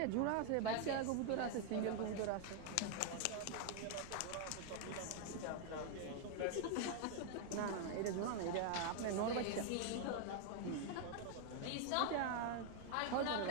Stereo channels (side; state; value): both; different; correlation 0.00